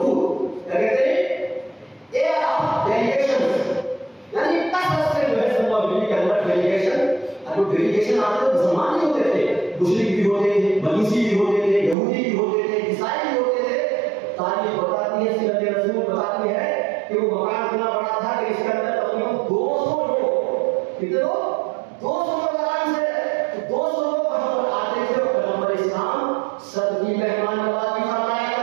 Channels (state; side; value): drops out; left; at 12.0 s